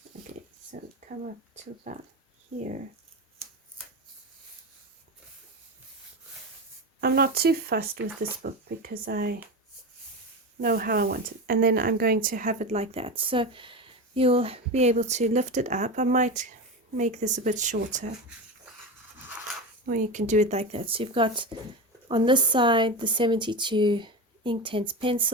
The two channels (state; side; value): normal; both; correlation 0.22